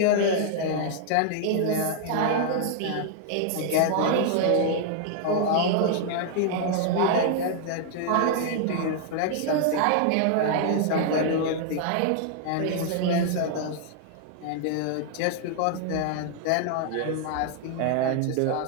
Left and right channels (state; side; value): different; both; correlation -0.01